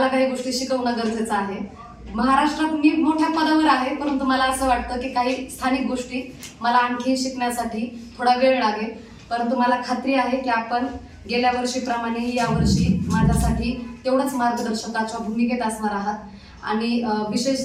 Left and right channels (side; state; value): both; identical; correlation 1.00